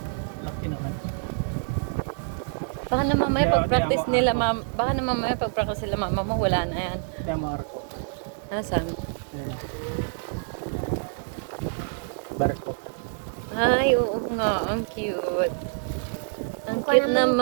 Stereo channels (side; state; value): left; silent; digital silence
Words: Laki naman. Baka na mamaya pag-practice nila baka na mamaya pag-practice nila mama mo wala na yan. Kaya Marco. Asan? Ayan. Barko. Ay, oo nga. Ang cute. Ang cute